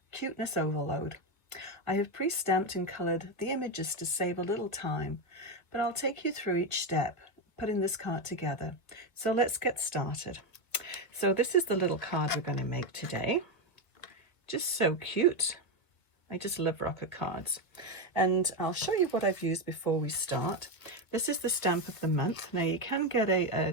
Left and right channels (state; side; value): late; right; 1.4 ms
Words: cuteness overload. I have pre-stamped and coloured the images to save a little time, but I'll take you through each step putting this card together. So let's get started. So this is the little card we're going to make today. Just so cute. I just love rocker cards. And I'll show you what I've used before we start. This is the stamp of the month. Now you can get